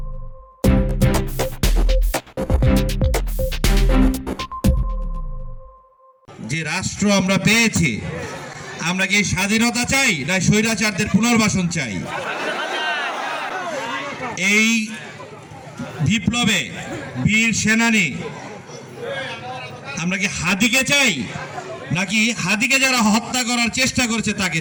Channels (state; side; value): identical; both; correlation 1.00